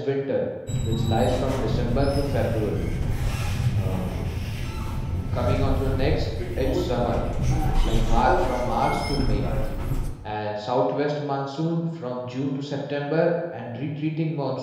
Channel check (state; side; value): identical; both; correlation 1.00